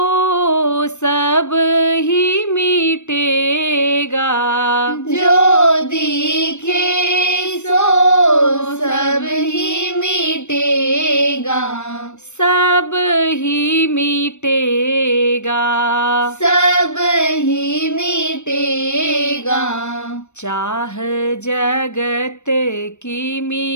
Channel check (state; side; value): late; right; 0.83 ms